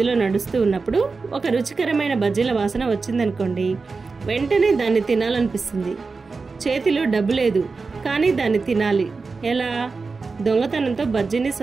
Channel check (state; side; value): quieter; left; 4.3 dB